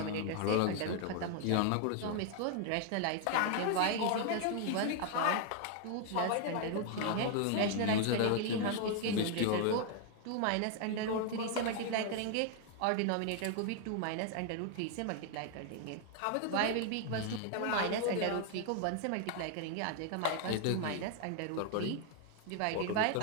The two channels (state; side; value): different; both; correlation 0.00